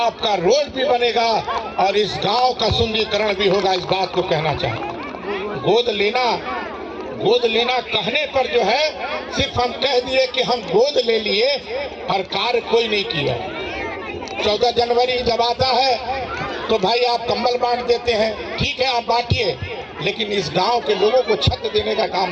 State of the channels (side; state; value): both; identical; correlation 1.00